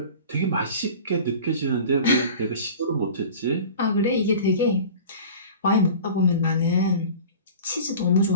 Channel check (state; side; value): inverted; both; correlation -0.39